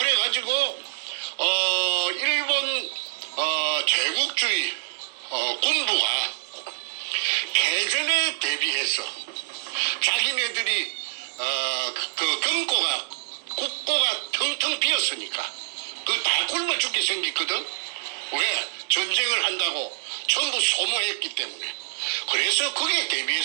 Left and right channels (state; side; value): silent; left; digital silence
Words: 일본 제국주의 군부가 패전에 대비해서 자기네들이 그 국고가 텅텅 비었으니까 그 다 굶어 죽게 생겼거든. 왜? 전쟁을 한다고 전부 소모했기 때문에. 그래서 거기에